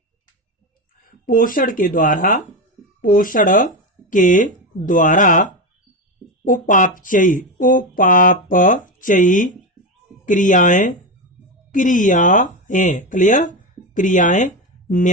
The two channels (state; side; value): normal; both; correlation 0.15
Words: पोषण के द्वारा उपापचयी क्रियाएं। क्लियर? क्रियाएं